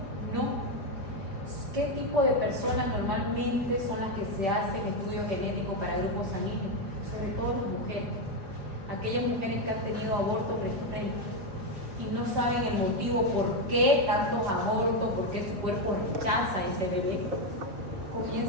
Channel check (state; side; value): late; left; 5.1 ms